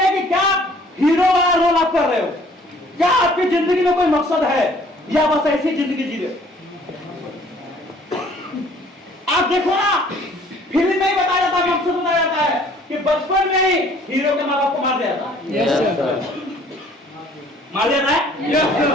कि क्या हीरो वाला रोल आप कर रहे हो? क्या आपकी जिंदगी में कोई मकसद है, या बस ऐसी जिंदगी जी रहे? आप देखो ना, फिल्म में ही बताया जाता है, मकसद बताया जाता है कि बचपन में ही हीरो के माँ बाप को मार दिया था, मार दिया है,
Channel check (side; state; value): both; normal; correlation 0.56